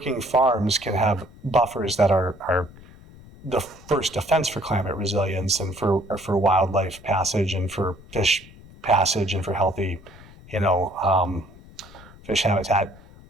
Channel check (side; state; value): left; noise; rumble, 21 dB below the sound